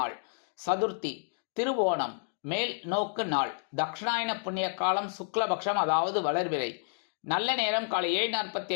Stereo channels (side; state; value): right; silent; 58 dB below the other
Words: சதுர்த்தி, திருவோணம், மேல் நோக்கு நாள், தக்ஷணாயன புண்ணிய காலம், சுக்லபக்ஷம், அதாவது வளர்பிறை. நல்ல நேரம் காலை